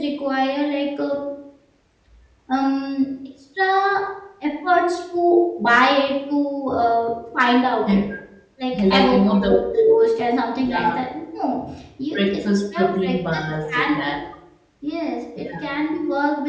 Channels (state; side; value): identical; both; correlation 1.00